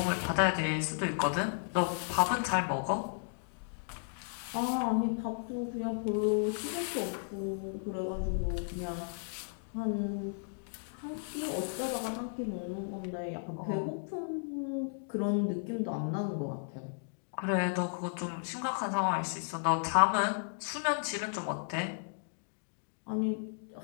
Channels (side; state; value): right; silent; digital silence